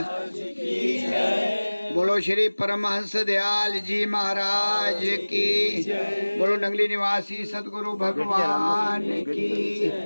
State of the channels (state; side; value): inverted; both; correlation -1.00